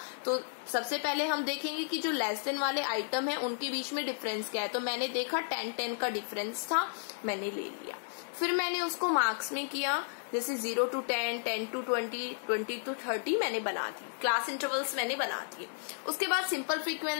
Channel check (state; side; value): silent; right; digital silence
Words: तो सबसे पहले हम देखेंगे कि जो लेस देन वाले आइटम है उनके बीच में डिफरेंस क्या है। तो मैंने देखा 10-10 का डिफरेंस था, मैंने ले लिया। फिर मैंने उसको मार्क्स में किया, जैसे 0 to 10, 10 to 20, 20 to 30 मैंने बना दी, क्लास इंटरवल्स मैंने बना दिए। उसके बाद सिंपल